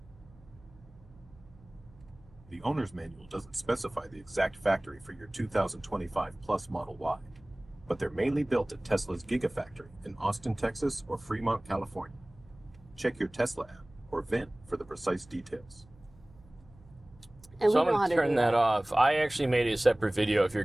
The owner's manual doesn't specify the exact factory for your 2025 Plus Model Y, but they're mainly built at Tesla's Gigafactory in Austin, Texas or Fremont, California. Check your Tesla app or VIN for the precise details. And So we I'm know how going to to turn do that off. I actually made a separate video if you're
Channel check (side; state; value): right; noise; hum, 25 dB below the sound